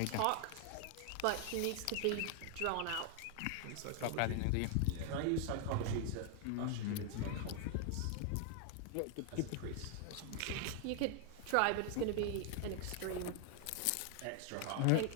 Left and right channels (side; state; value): both; different; correlation 0.00